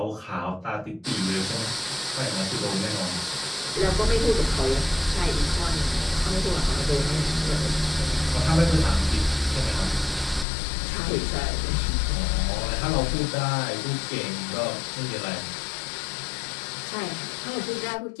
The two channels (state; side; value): drops out; right; at 10.5 s